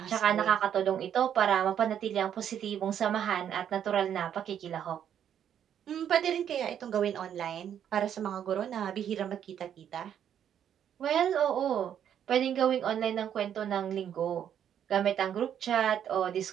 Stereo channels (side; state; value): left; quieter; 9.4 dB